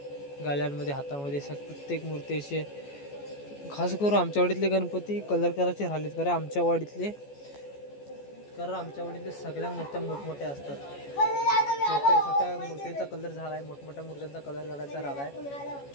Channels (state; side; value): late; right; 14 ms